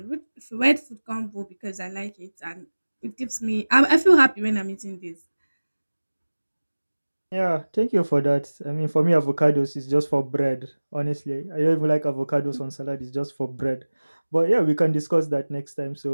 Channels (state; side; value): inverted; both; correlation -1.00